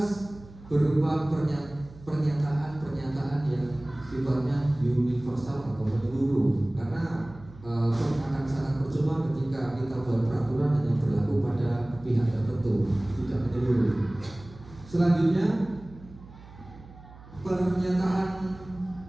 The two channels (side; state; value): right; noise; hum, 19 dB below the sound